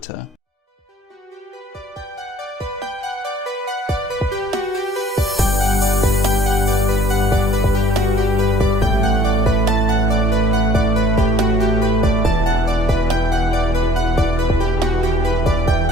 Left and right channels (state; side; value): normal; both; correlation 0.54